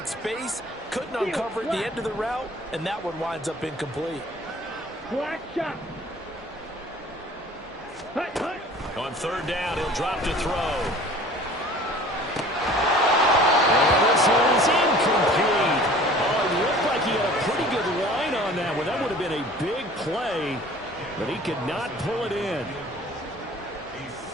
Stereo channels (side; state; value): both; normal; correlation 0.47